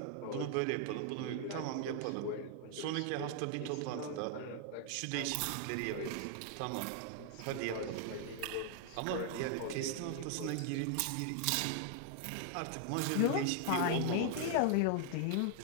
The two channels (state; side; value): different; both; correlation 0.00